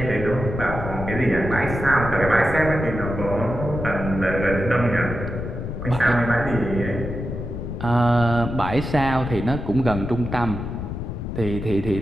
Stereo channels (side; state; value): left; noise; rumble, 6 dB below the sound